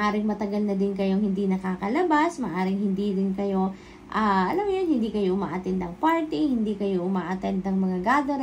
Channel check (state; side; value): identical; both; correlation 1.00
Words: matagal na din kayong hindi nakakalabas, maaaring hindi din kayo alam mo yun, hindi kayo umaattend ng party, hindi kayo umaattend ng mga